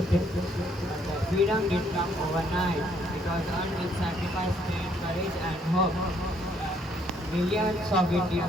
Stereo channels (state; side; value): normal; both; correlation 0.67